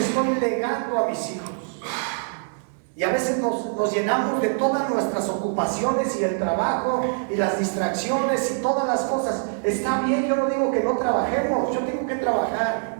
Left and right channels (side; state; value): left; silent; digital silence